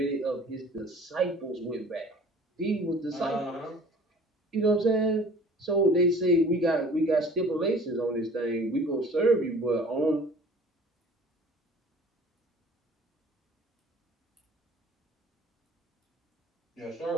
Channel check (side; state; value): both; normal; correlation 0.48